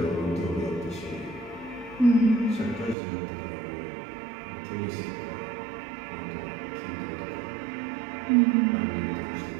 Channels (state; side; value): drops out; left; at 3.0 s